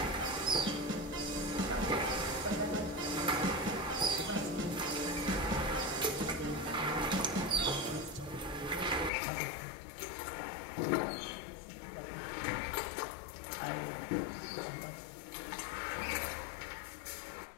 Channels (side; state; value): right; drops out; at 9.1 s